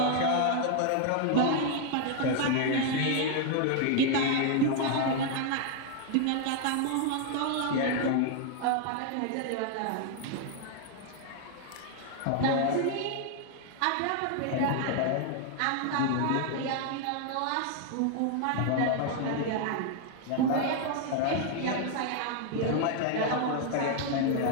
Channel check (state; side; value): different; both; correlation 0.00